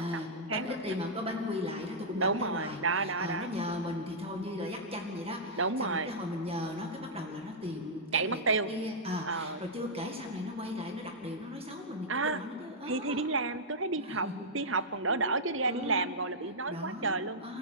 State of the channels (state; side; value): normal; both; correlation -0.10